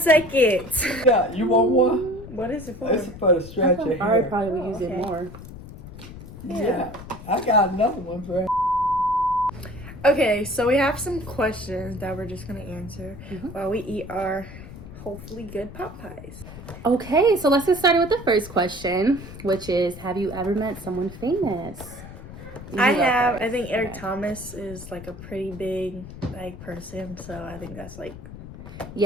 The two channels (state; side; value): noise; left; rumble, 14 dB below the sound